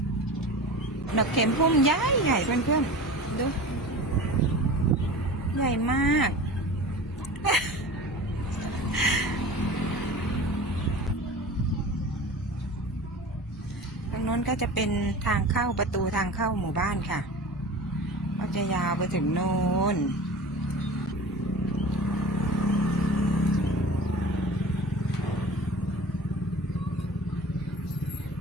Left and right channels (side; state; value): both; normal; correlation 0.36